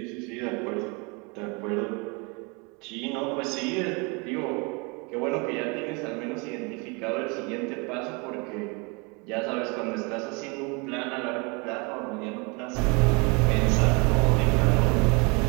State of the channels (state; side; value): quieter; left; 30.2 dB